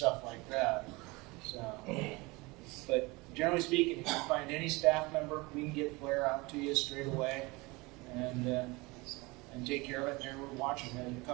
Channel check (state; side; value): quieter; left; 24.2 dB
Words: like that. So, but generally speaking, if you find any staff member, we can get flare out to you straight away and take care of it. And we're watching it. A